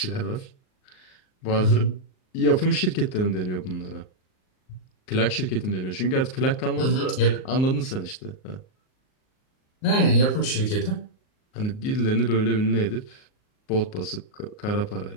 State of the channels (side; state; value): right; late; 38 ms